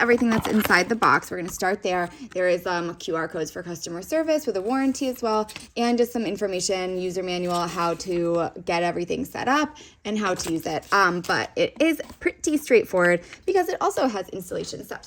everything that's inside the box. We're going to start there. There is QR codes for customer service with a warranty as well, and just some information, user manual, how to get everything set up and how to use it. But it is pretty straightforward because it also has installation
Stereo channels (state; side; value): identical; both; correlation 1.00